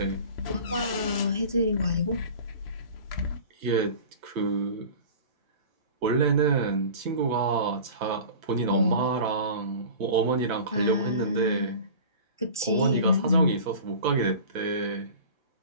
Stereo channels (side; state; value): both; inverted; correlation -0.39